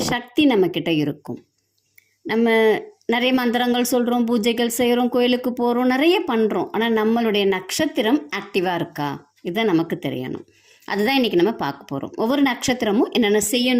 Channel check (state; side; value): identical; both; correlation 1.00